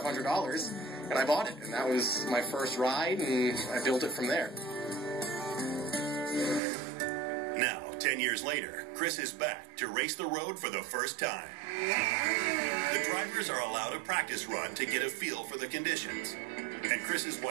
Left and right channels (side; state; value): left; drops out; at 6.6 s